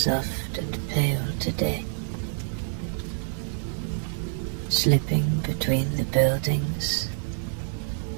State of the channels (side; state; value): left; silent; digital silence